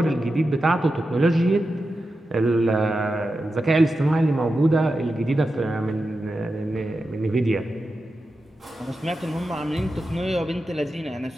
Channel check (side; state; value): both; normal; correlation 0.90